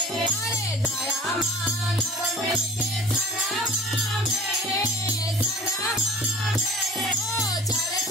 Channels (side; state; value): both; normal; correlation 0.42